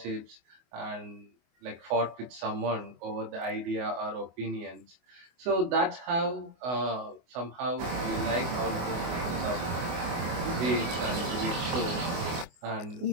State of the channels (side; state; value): left; late; 24 ms